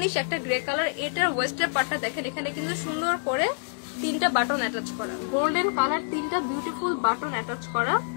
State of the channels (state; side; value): silent; right; 60 dB below the other